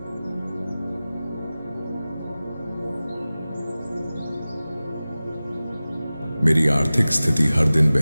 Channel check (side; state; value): both; inverted; correlation -0.97